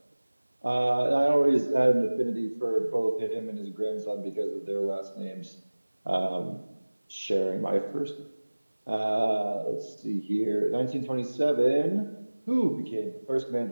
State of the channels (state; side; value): inverted; both; correlation -1.00